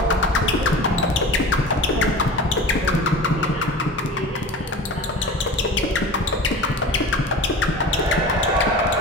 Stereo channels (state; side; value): normal; both; correlation 0.36